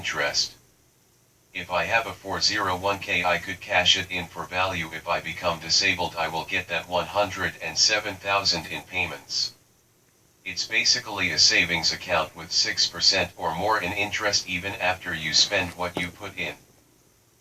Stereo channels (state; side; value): identical; both; correlation 1.00